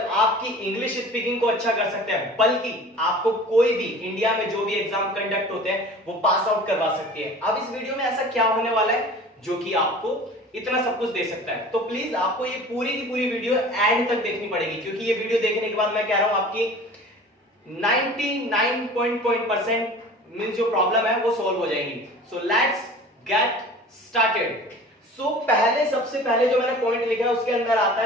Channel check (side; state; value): both; normal; correlation 0.42